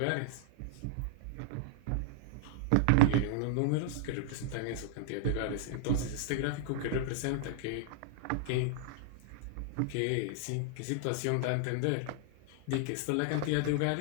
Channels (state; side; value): different; both; correlation -0.01